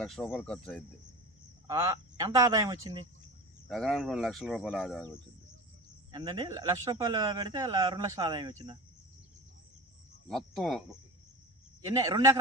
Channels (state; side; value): normal; both; correlation 0.31